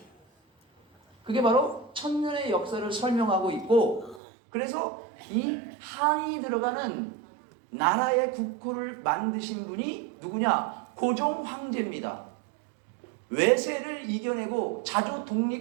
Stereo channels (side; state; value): left; drops out; at 4.2 s